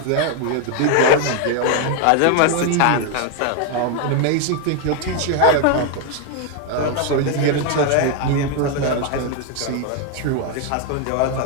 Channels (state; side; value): different; both; correlation 0.01